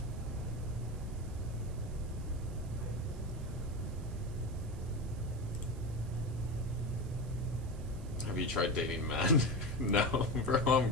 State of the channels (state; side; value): noise; right; hiss, 23 dB below the sound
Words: Have you tried dating men? No, bro, I'm